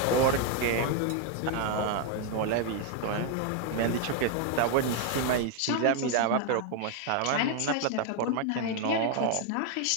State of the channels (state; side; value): different; both; correlation 0.01